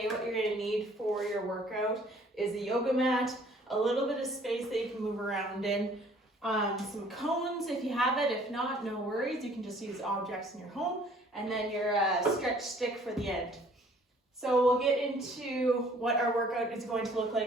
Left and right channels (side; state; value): both; normal; correlation 0.57